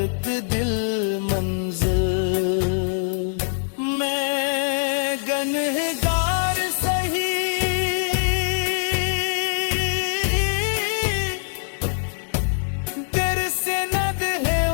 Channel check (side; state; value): right; silent; digital silence